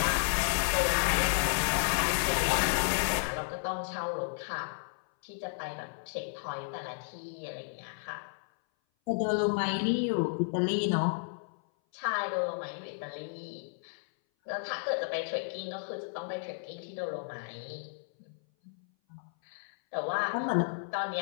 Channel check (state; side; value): silent; right; 56 dB below the other